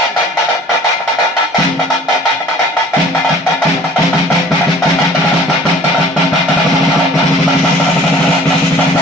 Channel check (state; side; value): normal; both; correlation 0.50